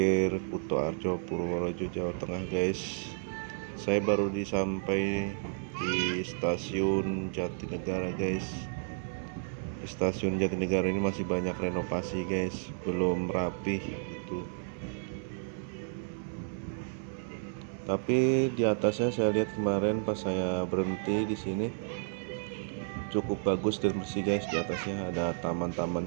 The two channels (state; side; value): silent; left; 56 dB below the other